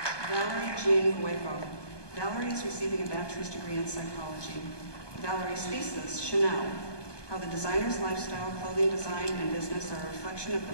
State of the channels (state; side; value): late; right; 1.2 ms